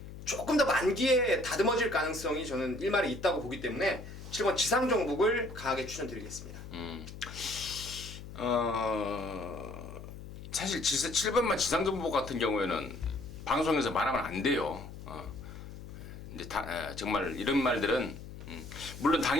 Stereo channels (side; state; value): left; noise; hum, 12 dB below the sound